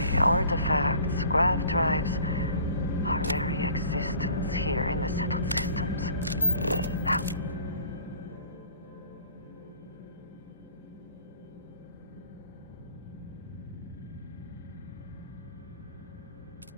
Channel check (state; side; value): inverted; both; correlation -0.50